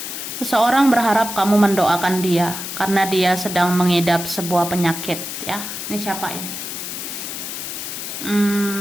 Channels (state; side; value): noise; left; hiss, 6 dB below the sound